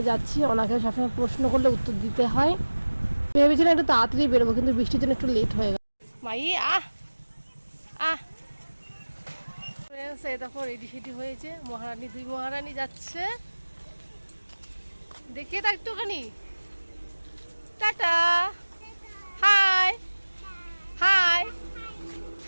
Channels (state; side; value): inverted; both; correlation -1.00